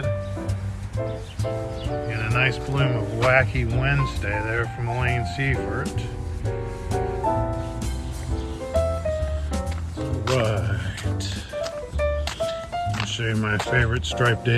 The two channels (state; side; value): identical; both; correlation 1.00